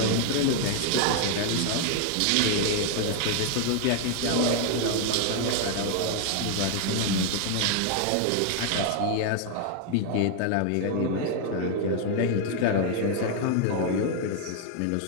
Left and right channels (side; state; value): both; different; correlation 0.00